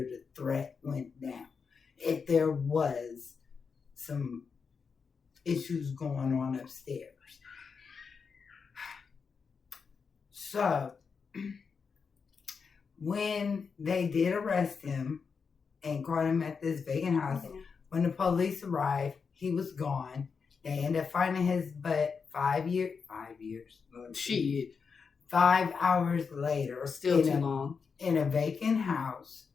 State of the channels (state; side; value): quieter; right; 5.6 dB